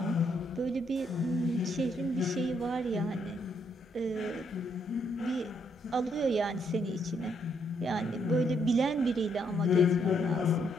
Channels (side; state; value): both; normal; correlation 0.74